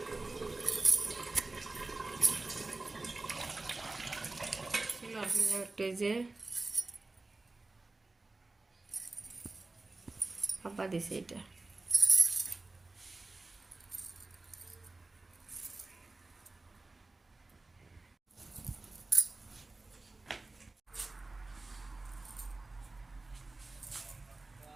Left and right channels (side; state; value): left; quieter; 3.3 dB